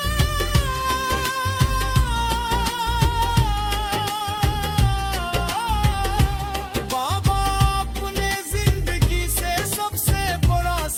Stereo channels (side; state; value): both; identical; correlation 1.00